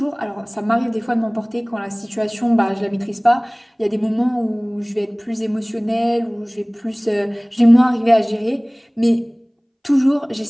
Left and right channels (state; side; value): identical; both; correlation 1.00